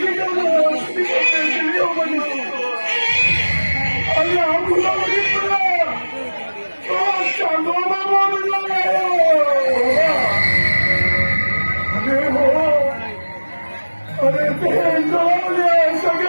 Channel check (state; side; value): inverted; both; correlation -1.00